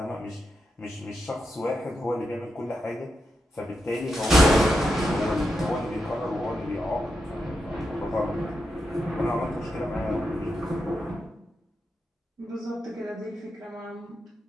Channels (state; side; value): normal; both; correlation 0.86